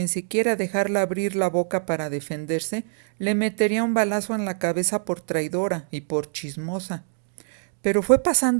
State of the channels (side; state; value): left; silent; digital silence